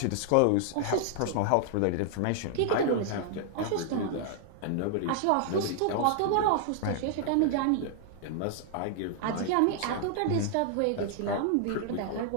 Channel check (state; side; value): different; both; correlation -0.01